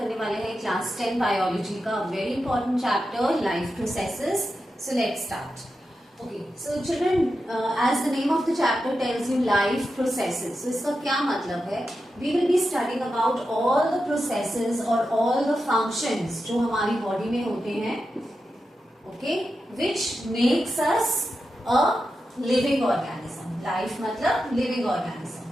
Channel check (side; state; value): both; normal; correlation 0.89